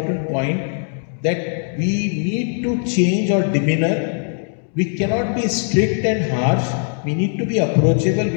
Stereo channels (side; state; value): right; silent; 66 dB below the other